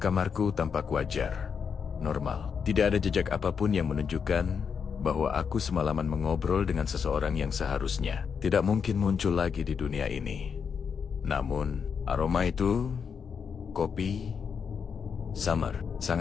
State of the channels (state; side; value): quieter; right; 6.5 dB